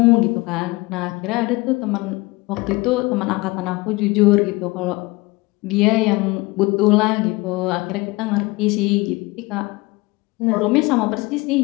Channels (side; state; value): right; quieter; 22.9 dB